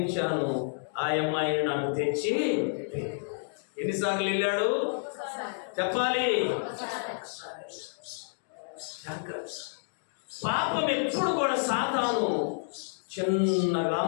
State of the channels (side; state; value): right; silent; digital silence